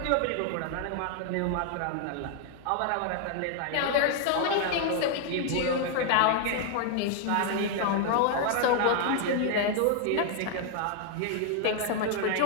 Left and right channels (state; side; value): different; both; correlation 0.00